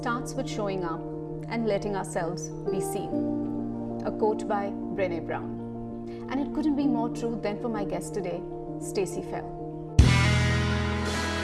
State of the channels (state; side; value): identical; both; correlation 1.00